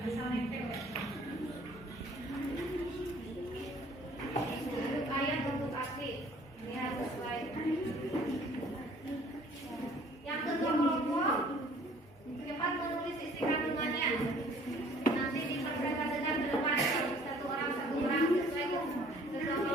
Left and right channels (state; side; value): normal; both; correlation 0.55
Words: Asal nempel ya. Untuk ayat bentuk asli lihat sesuai. Yang kedua kelompok cepat menulis isi kandungannya. Nanti dipresentasikan ke depan satu orang sesuai